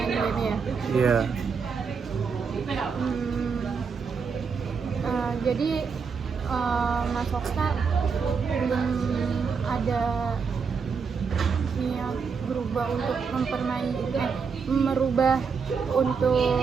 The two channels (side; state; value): left; quieter; 5.7 dB